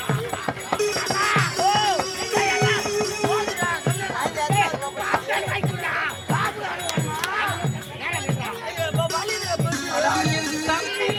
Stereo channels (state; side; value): identical; both; correlation 1.00